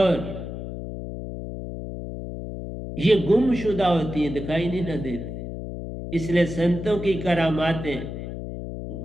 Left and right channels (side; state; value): left; noise; hum, 8 dB below the sound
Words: ये गुमशुदा होती है, दिखाई नहीं ना देती, इसलिए संतों की करामातें